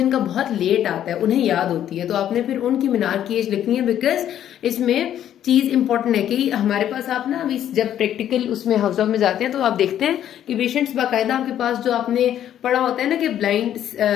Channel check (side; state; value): right; quieter; 10.8 dB